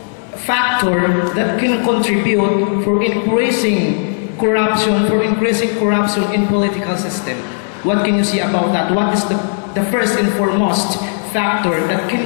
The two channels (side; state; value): right; silent; 61 dB below the other